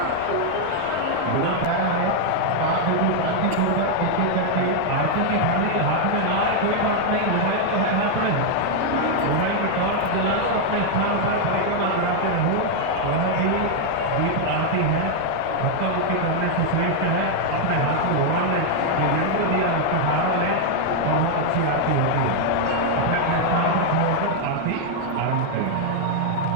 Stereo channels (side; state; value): both; different; correlation 0.00